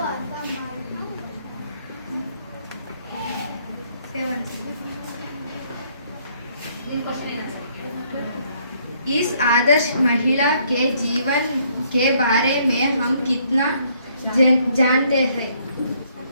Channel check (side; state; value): both; inverted; correlation -0.67